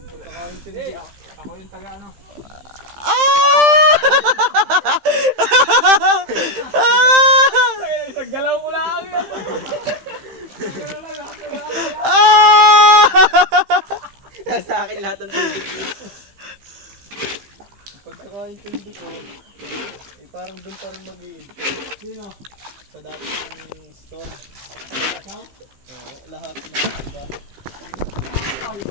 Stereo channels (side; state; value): left; late; 15 ms